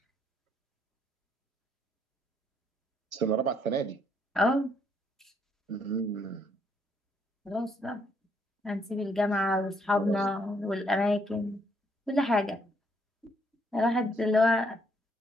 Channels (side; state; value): both; normal; correlation 0.71